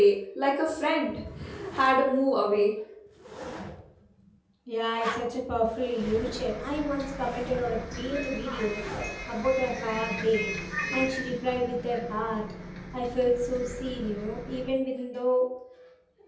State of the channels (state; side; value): identical; both; correlation 1.00